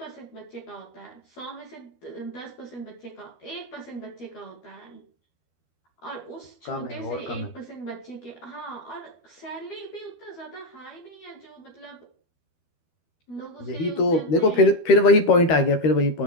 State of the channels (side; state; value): right; late; 12 ms